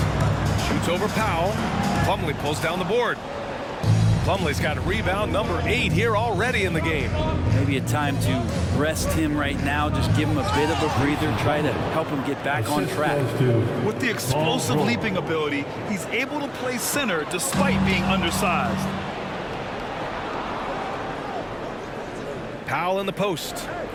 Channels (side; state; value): both; identical; correlation 1.00